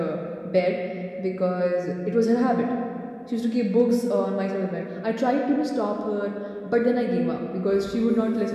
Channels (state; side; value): identical; both; correlation 1.00